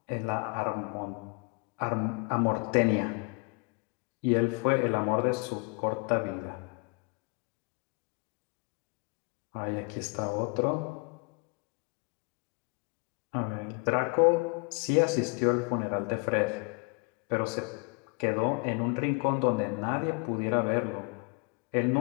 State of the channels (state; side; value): quieter; right; 33.3 dB